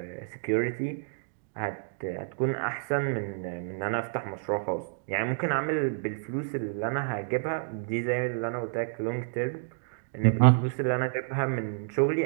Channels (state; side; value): silent; left; digital silence